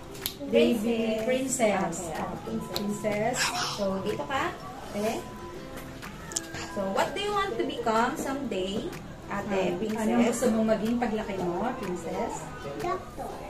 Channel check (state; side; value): identical; both; correlation 1.00